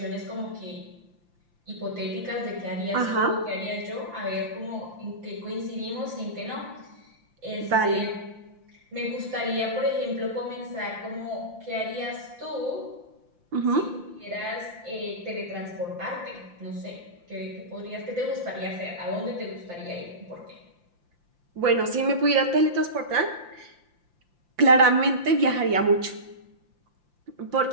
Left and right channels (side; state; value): left; late; 5.8 ms